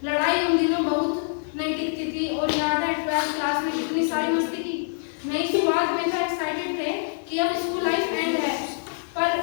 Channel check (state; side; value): silent; right; 62 dB below the other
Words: लड़ाई उन दिनों बहुत नहीं टिकती थी। और याद है 12th क्लास में कितनी सारी मस्ती की। नई शुरुआत में तो एक्साइटेड थे कि अब स्कूल लाइफ एंड है, पर